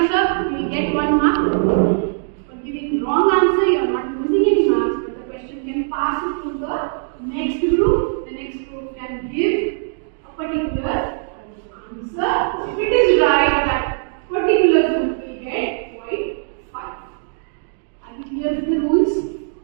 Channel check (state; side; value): silent; left; digital silence